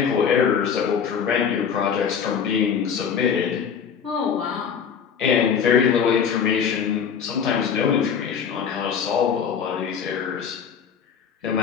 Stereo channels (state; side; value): quieter; right; 7.2 dB